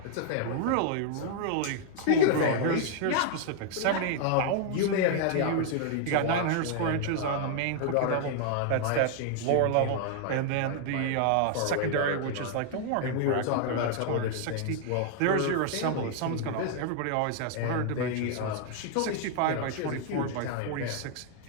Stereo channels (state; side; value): different; both; correlation 0.00